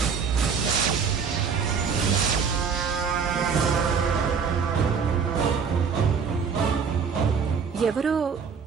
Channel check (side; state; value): left; quieter; 6.1 dB